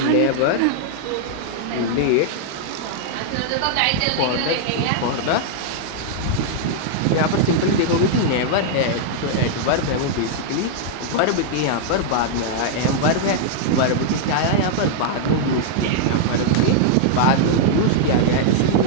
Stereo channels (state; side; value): different; both; correlation -0.01